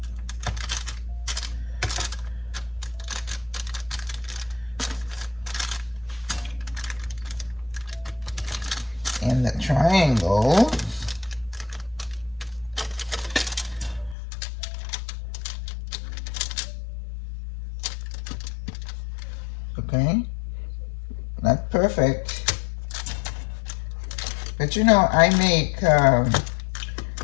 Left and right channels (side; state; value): right; drops out; at 14.2 s